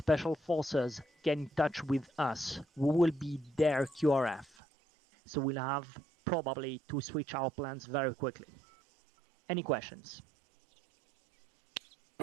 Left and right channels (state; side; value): drops out; left; at 4.5 s